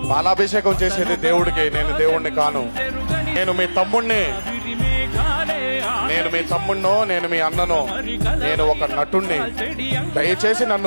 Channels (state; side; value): inverted; both; correlation -1.00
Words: పాలాభిషేకం చేసేది దేవుడికి, నేను దేవుణ్ణి కాను. నేను మీ తమ్ముణ్ణి, నేను మీ తమ్ముణ్ణో, నేను మీ అన్ననో, నేను ఒక నటుణ్ణి. దయచేసి